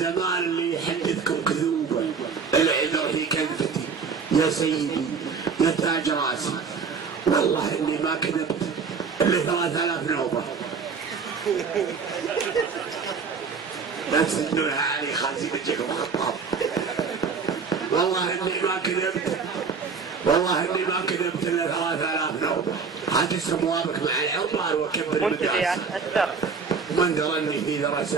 اللي يحدثكم كذوبا، العذر في كذبتي يا سيدي يا تاج راسي، والله اني ما كذبت الا 3000 نوبه. لا تسدونها علي خازي بجيكم خطاب. والله اني ما كذبت، والله اني ما كذبت الا 3000 نوبه. هات سموابك مع العمار وكبر المدرسه. من درني في ذرى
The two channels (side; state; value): left; quieter; 5.5 dB